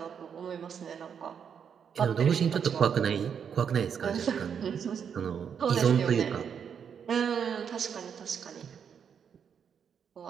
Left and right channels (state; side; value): quieter; left; 7.4 dB